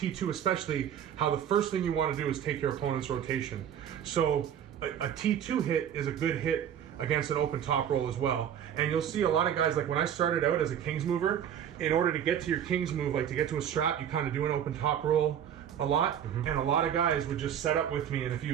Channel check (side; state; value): left; quieter; 9.4 dB